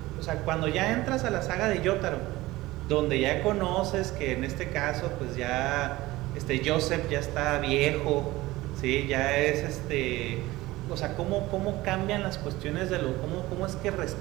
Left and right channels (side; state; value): left; quieter; 18.6 dB